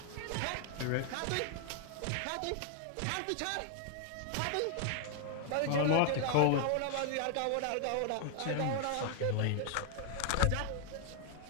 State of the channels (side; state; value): both; different; correlation 0.00